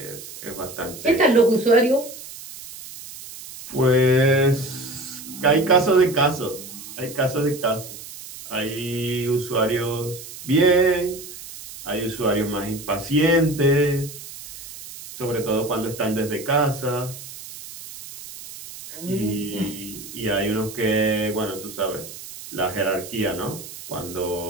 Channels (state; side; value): noise; right; hiss, 14 dB below the sound